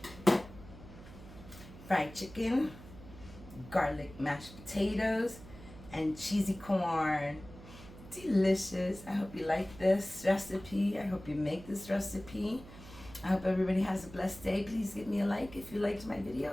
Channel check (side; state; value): right; noise; hum, 17 dB below the sound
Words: Fried chicken, garlic mashed potatoes, and cheesy corn. Delicious. I hope you like this recipe. I hope you make this recipe. I hope everybody has a blessed day. Please give me a like if you liked my